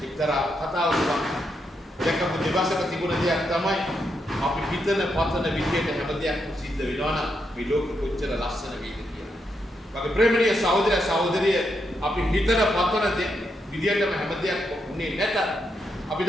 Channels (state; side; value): normal; both; correlation 0.82